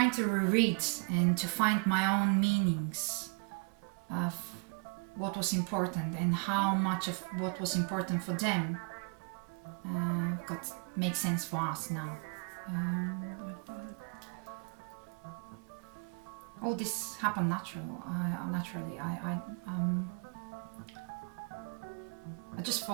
reread and to find my own meanings of what was important and how much of what was important for them makes sense for us now. All this happened naturally. I just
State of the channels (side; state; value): left; quieter; 36.1 dB